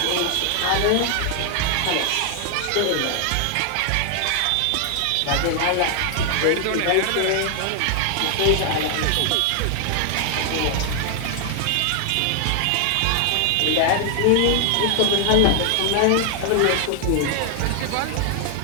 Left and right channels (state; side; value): different; both; correlation 0.00